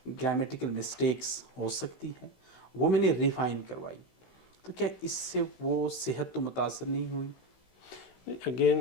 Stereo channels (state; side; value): late; right; 16 ms